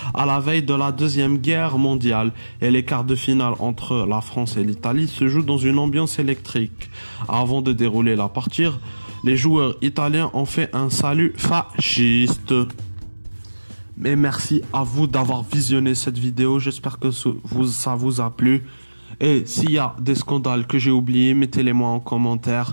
à la veille de la Deuxième Guerre mondiale, et les quarts de finale entre la France et l'Italie se jouent dans une ambiance électrique. Avant de dérouler la partie, les joueurs italiens ont fait un salut fasciste. Mais merci à vous d'avoir visionné cette vidéo. J'espère que ça vous a plu. Et s'il y a des scandales que j'ai oubliés, mettez-les-moi en commentaire.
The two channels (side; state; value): both; inverted; correlation -1.00